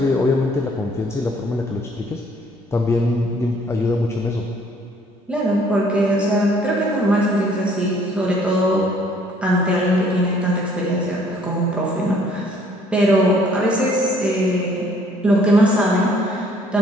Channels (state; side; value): normal; both; correlation 0.61